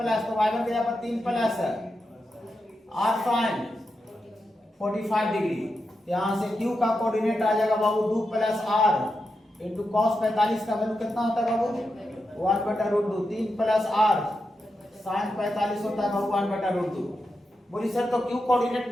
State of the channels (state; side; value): normal; both; correlation 0.88